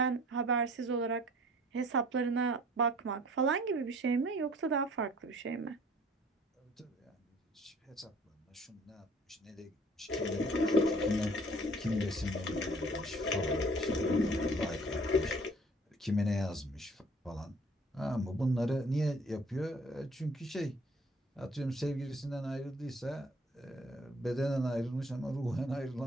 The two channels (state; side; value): normal; both; correlation 0.54